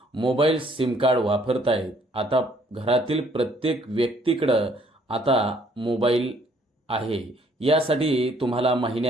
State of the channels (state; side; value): normal; both; correlation 0.64